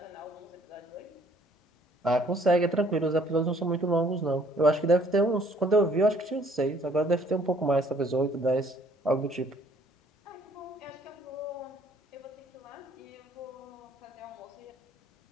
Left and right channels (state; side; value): normal; both; correlation 0.61